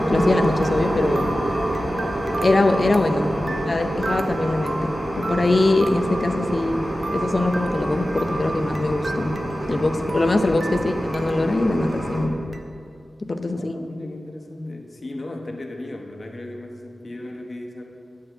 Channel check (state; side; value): normal; both; correlation 0.94